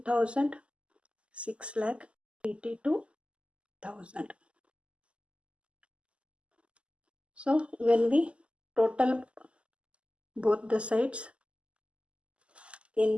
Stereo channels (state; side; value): late; left; 0.055 ms